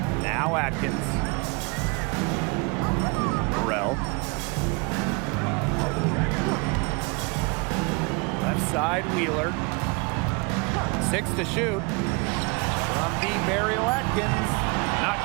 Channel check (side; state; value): left; quieter; 29.8 dB